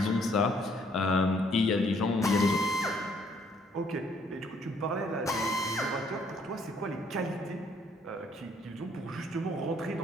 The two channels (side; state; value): both; normal; correlation 0.65